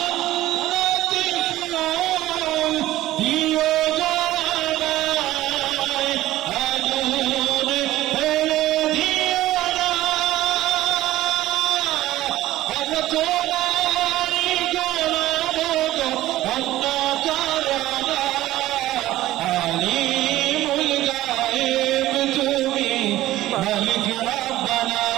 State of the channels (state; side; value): quieter; left; 15.4 dB